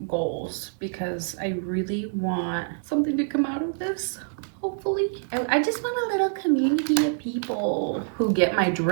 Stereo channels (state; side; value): silent; left; digital silence